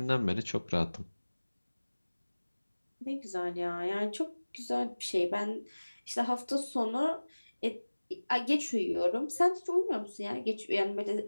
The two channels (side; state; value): both; inverted; correlation -1.00